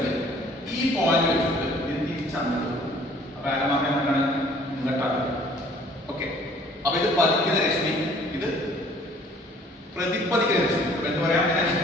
ഈ പോയിന്റ് വെച്ചിട്ട് ഇത് തിരിച്ചാണ്. അപ്പൊ ആരമാക്കാൻ എന്താണ് ഇങ്ങോട്ടാണ്. ഓക്കെ, അപ്പൊ ഇത് പതിക്കുന്ന രശ്മി, ഇത് പ്രതിപതിക്കുന്ന രശ്മി. എന്ന് പറയാം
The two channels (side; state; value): both; normal; correlation 0.55